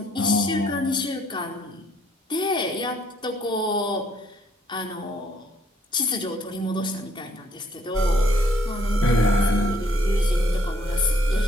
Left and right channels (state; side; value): normal; both; correlation 0.66